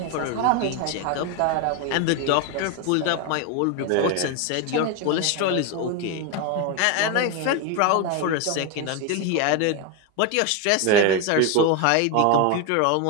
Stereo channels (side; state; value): both; different; correlation 0.02